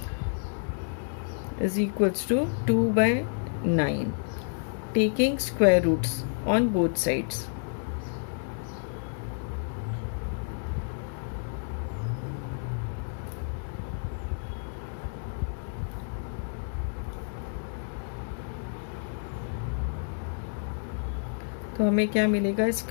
is equals to 2/9, taking square roots on both sides. तो हमें क्या मिलेगा,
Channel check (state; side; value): silent; right; digital silence